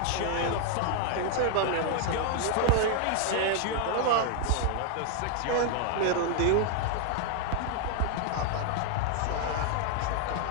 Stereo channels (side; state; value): both; different; correlation 0.00